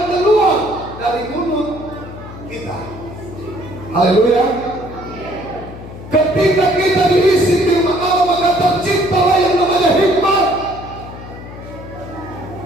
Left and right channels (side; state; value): left; noise; hum, 14 dB below the sound